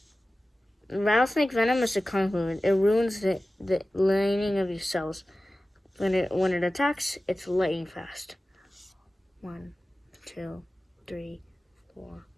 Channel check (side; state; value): both; normal; correlation 0.96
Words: rattlesnake venom is a convoluted. It ruins the lining of your cells. When it attacks, it's lightning fast. 1, 2, 3, 4,